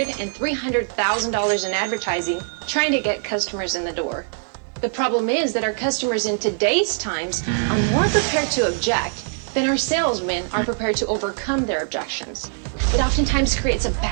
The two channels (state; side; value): silent; left; digital silence